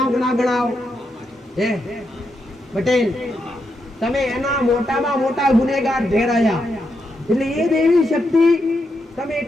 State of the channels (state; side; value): normal; both; correlation 0.83